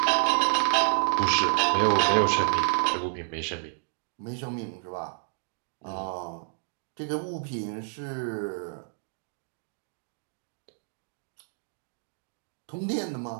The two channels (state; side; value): silent; left; digital silence